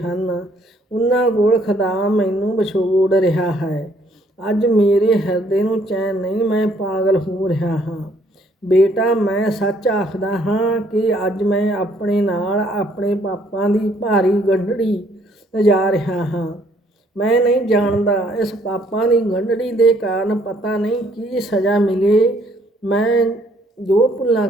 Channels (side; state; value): both; normal; correlation 0.65